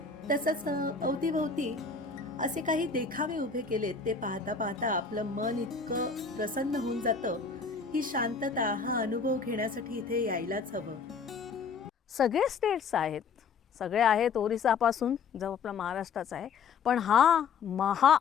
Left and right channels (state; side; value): quieter; right; 5.4 dB